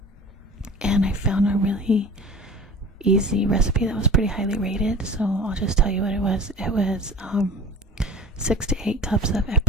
And I found a really easy recipe that was pretty highly rated. So I'll just tell you what it was. It was 6 to 8 cups of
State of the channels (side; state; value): both; normal; correlation 0.40